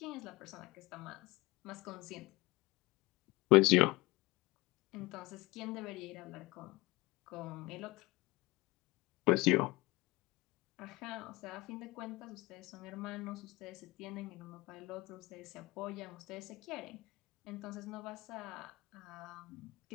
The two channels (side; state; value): right; quieter; 21.9 dB